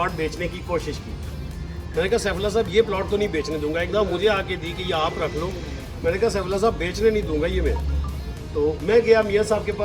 बेचने की कोशिश की। मैंने कहा सैफुल्ला साहब ये प्लॉट तो नहीं बेचने दूंगा। एकदम मुझे आके दी कि ये आप रख लो। मैंने कहा सैफुल्ला साहब बेचने नहीं दूंगा ये मैं। تو میں گیا میاں صاحب کے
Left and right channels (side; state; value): both; identical; correlation 1.00